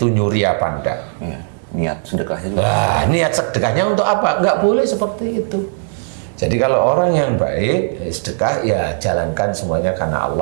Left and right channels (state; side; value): silent; left; digital silence